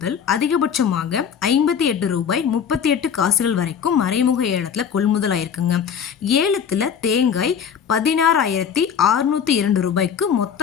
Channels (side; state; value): right; quieter; 7.6 dB